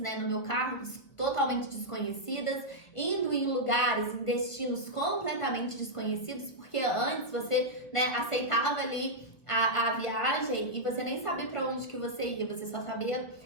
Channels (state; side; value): late; right; 1.3 ms